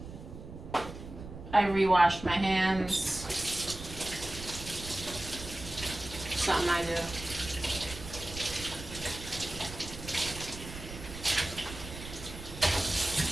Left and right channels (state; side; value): noise; right; rumble, 12 dB below the sound